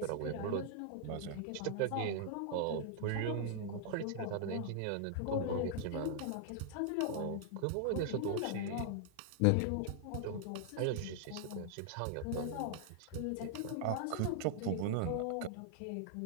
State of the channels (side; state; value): both; different; correlation -0.01